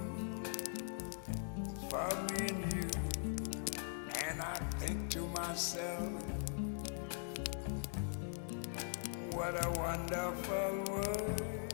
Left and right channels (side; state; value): right; silent; digital silence